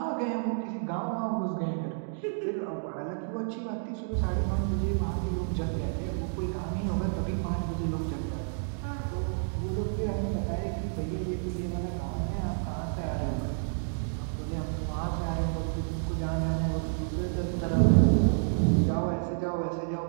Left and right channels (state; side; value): silent; left; digital silence